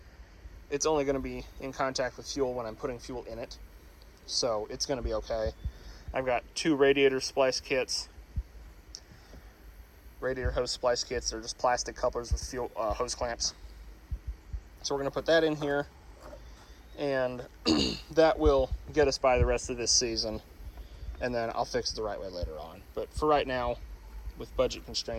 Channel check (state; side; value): identical; both; correlation 1.00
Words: it's only going to be in contact with fuel when I'm putting fuel in it, so it's going to be okay. I've got 2 radiator splice kits, radiator hose splice kits. They're just plastic couplers with fuel hose clamps. So we're going to put that in here, and that will get us by the rest of this season, and then I'll fix it the right way later on. But for right now, with budget